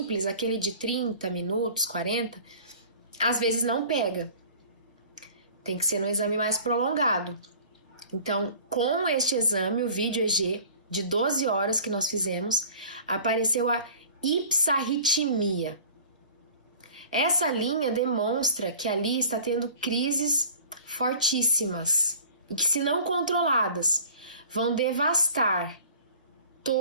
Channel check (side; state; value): both; inverted; correlation -0.45